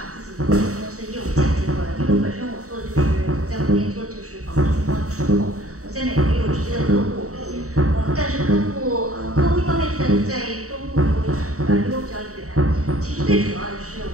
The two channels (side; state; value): left; late; 0.65 ms